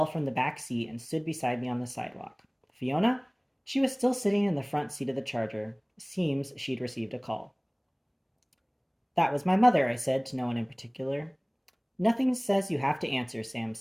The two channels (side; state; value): both; identical; correlation 1.00